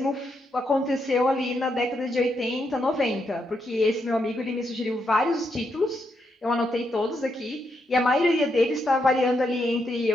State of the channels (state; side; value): normal; both; correlation 0.80